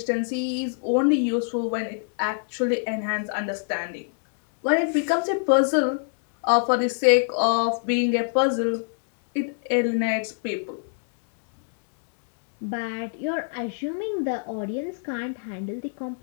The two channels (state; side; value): silent; right; digital silence